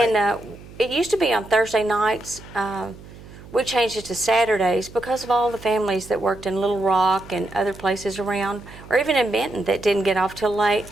And it used to be on Thursday nights. We changed it to Saturdays because of all the families that worked in Little Rock and other places around, or even in Benton, that didn't get off till late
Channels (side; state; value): right; noise; hum, 18 dB below the sound